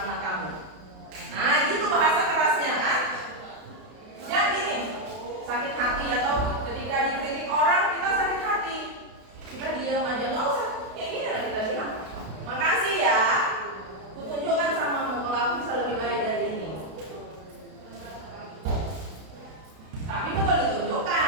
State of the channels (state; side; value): late; left; 32 ms